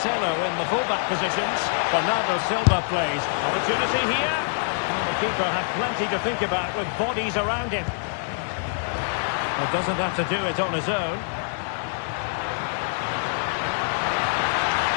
in the fullback positions. Bernardo Silva plays. Opportunity here. Well, the keeper had plenty to think about with bodies around him. Well, doesn't have to do it on his own.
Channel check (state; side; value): silent; right; 62 dB below the other